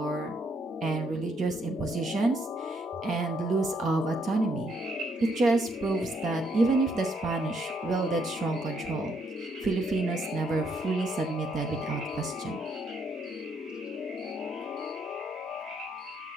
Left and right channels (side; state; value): both; normal; correlation 0.72